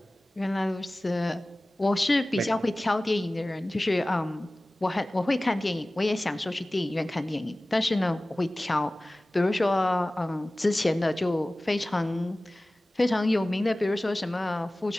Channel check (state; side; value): normal; both; correlation 0.98